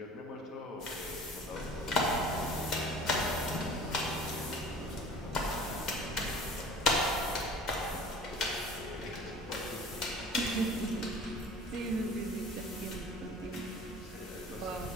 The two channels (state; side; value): normal; both; correlation 0.44